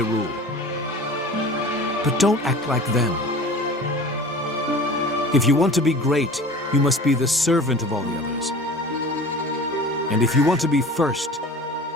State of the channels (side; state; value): both; normal; correlation 0.40